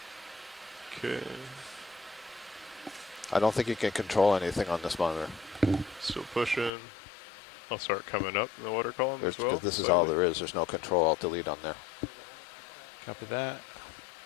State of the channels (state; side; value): drops out; right; at 6.7 s